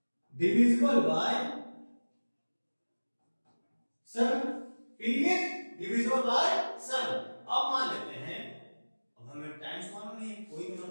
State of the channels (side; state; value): both; inverted; correlation -1.00